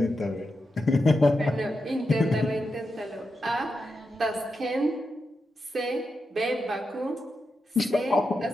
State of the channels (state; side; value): normal; both; correlation 0.87